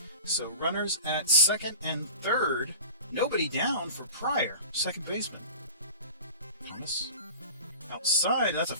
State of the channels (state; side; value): inverted; both; correlation -0.38